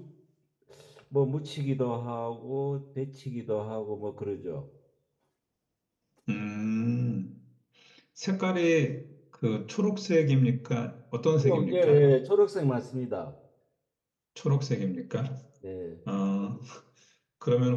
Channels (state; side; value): identical; both; correlation 1.00